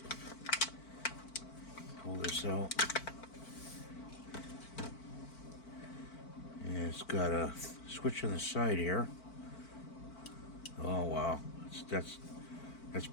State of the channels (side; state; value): right; late; 4.5 ms